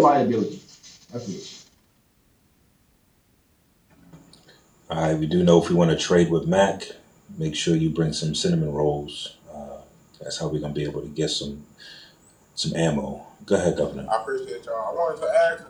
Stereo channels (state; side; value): identical; both; correlation 1.00